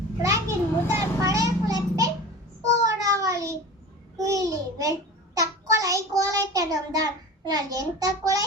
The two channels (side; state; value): both; normal; correlation 0.35